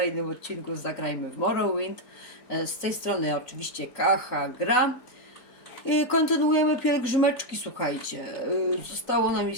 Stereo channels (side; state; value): right; late; 3.9 ms